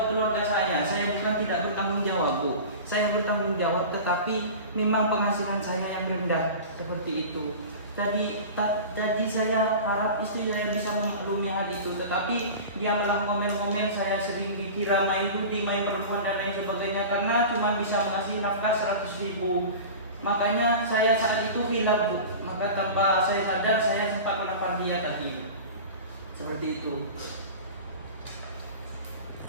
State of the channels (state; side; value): inverted; both; correlation -0.34